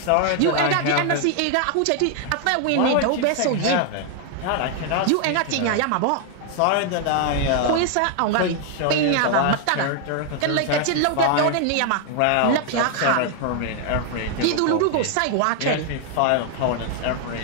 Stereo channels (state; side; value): different; both; correlation 0.00